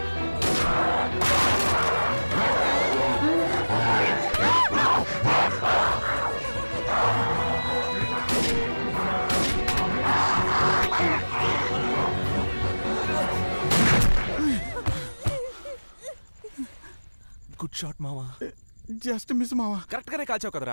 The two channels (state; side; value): inverted; both; correlation -1.00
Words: గుడ్ షాట్ మామ. జస్ట్ మిస్ మామ. కరెక్ట్ గానే కాల్చావు